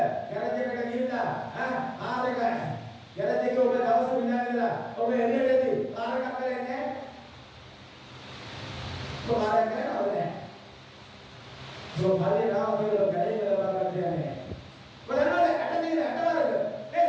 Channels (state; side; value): identical; both; correlation 1.00